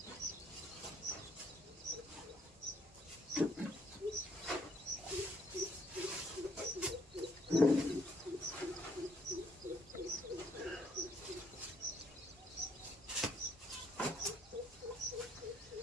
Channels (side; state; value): both; normal; correlation 0.68